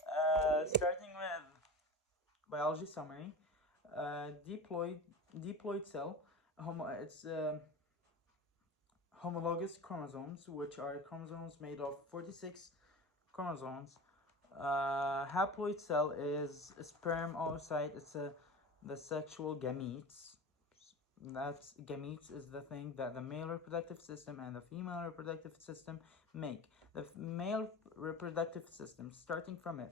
with biology summary. Diploid cell, it's homologous chromosomes, which are chromosomes made of 46 chromosomes. Haploid cell is a sperm oocyte. It's the sexual gametes. That's gametes is the thing that the male reproductive system and the female reproductive system make. The male reproductive system, starting from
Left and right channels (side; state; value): both; normal; correlation 0.31